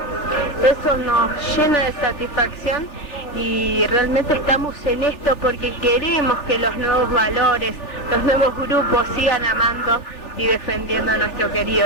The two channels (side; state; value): right; late; 3.4 ms